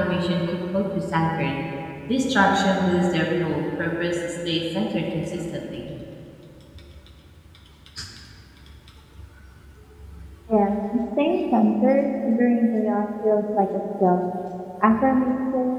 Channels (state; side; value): identical; both; correlation 1.00